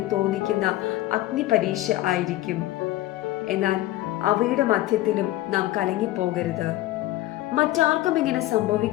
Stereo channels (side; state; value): right; quieter; 16.0 dB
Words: തോന്നിക്കുന്ന അഗ്നിപരീക്ഷ ആയിരിക്കും. എന്നാൽ അവയുടെ മധ്യത്തിലും നാം കലങ്ങിപ്പോകരുത്. മറ്റാർക്കും ഇങ്ങനെ